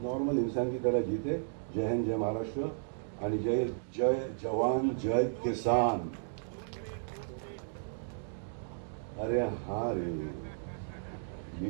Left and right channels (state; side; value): silent; left; digital silence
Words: नॉर्मल इंसान की तरह जीते. जय हिंद, जय महाराष्ट्र, आणि जय जय जवान, जय किसान. अरे हाँ रे, ये